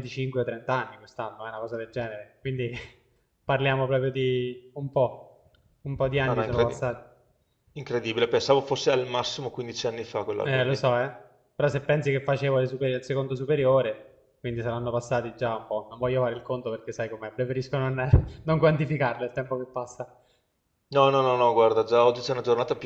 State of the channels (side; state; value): both; identical; correlation 1.00